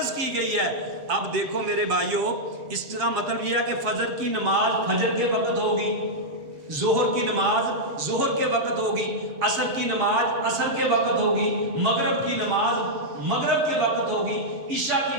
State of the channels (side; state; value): left; late; 7.2 ms